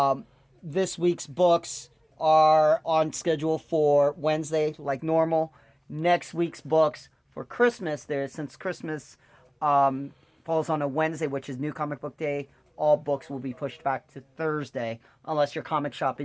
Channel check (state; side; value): identical; both; correlation 1.00